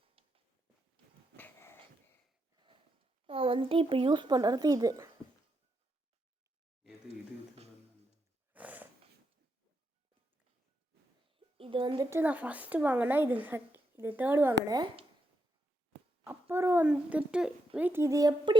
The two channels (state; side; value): normal; both; correlation 0.82